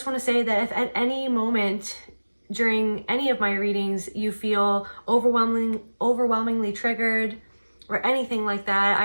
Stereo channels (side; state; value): both; inverted; correlation -1.00